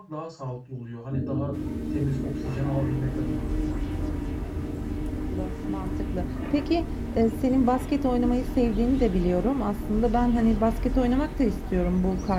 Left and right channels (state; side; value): identical; both; correlation 1.00